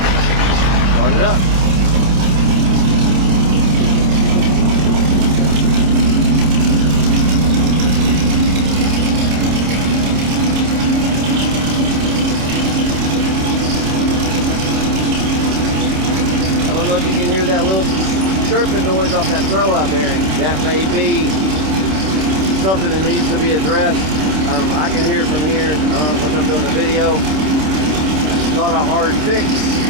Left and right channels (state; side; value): late; left; 27 ms